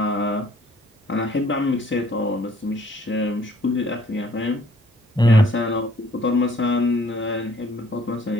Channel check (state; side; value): normal; both; correlation 0.60